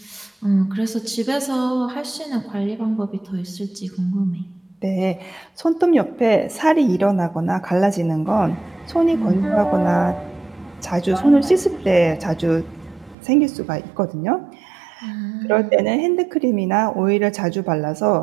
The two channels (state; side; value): drops out; left; at 13.2 s